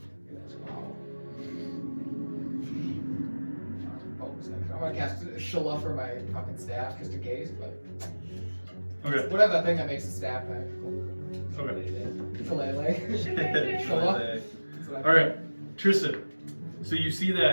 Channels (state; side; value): inverted; both; correlation -1.00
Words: Wow. Bonus action. I'm gonna cast Shala for my fucking staff just in case, but Okay. whatever that thing that makes the staff back. Okay. Shillelagh. Shala. Alright, Tristan. So you see